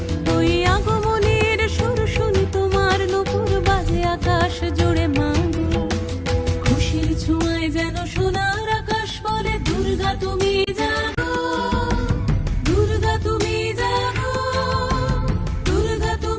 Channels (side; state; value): both; identical; correlation 1.00